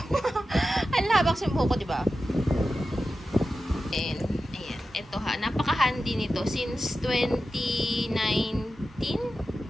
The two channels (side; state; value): both; normal; correlation 0.92